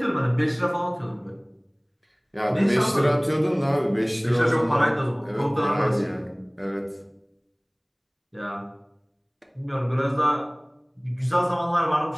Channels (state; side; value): identical; both; correlation 1.00